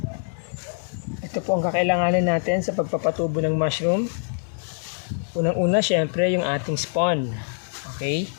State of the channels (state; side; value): silent; right; 62 dB below the other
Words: Ito po ang kakailanganin natin sa pagpapatubo ng mushroom. Unang-una, syempre, yung ating spawn. Okay?